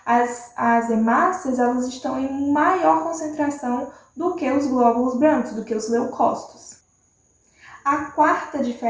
As hemácias, elas estão em maior concentração do que os glóbulos brancos, do que os leucócitos. A quarta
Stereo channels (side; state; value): both; identical; correlation 1.00